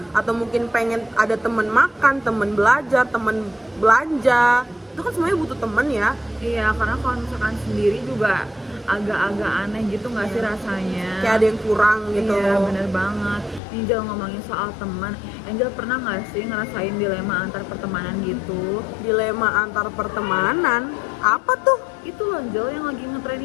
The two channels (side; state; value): right; drops out; at 13.6 s